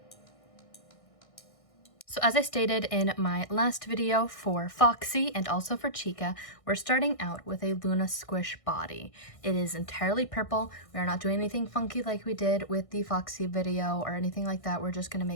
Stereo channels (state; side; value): late; right; 1.6 ms